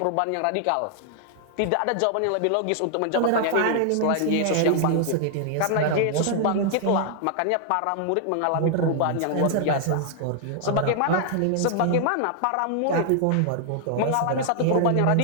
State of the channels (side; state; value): both; different; correlation 0.00